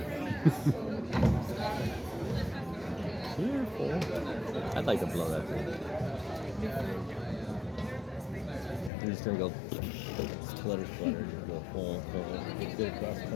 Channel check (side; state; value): right; drops out; at 8.9 s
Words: You're full. I'd like to blow that thing. I'm just gonna go splutter, just go full, get across the